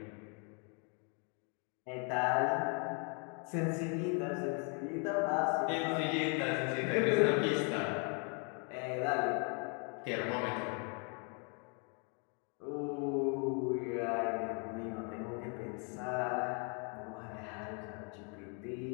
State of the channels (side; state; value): right; quieter; 37.5 dB